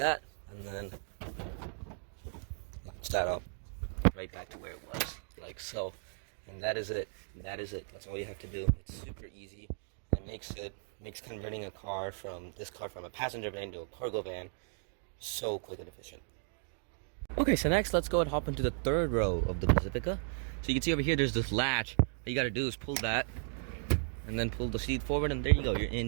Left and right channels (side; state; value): left; silent; digital silence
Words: and then latch that up right back to where it was, like so. And that is it. That is it. That's all you have to do. It's super easy. It makes converting a car from a passenger van to a cargo van so quick and efficient. Okay, so next let's go and hop into the third row of the Pacifica. So you can see over here there's this latch. All you gotta do is pull that and then pull the seat forward, and there you go, you're